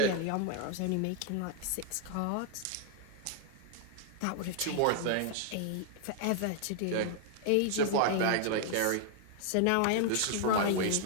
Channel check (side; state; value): both; different; correlation 0.00